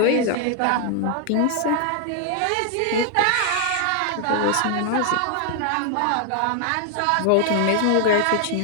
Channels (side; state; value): both; different; correlation 0.00